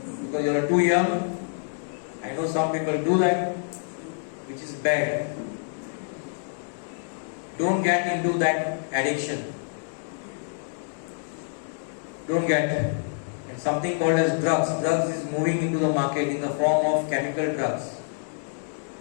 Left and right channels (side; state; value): right; silent; digital silence